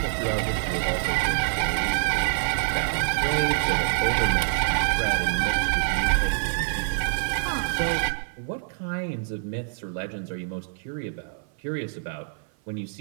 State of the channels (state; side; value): silent; left; 57 dB below the other